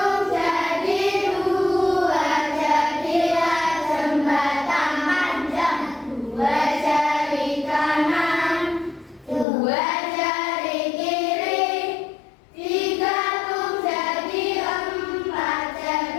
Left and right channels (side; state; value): right; drops out; at 9.5 s